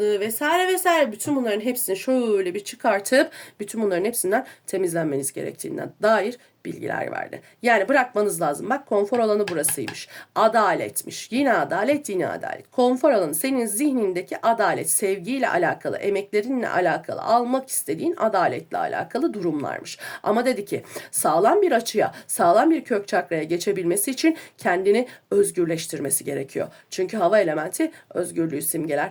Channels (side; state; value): both; identical; correlation 1.00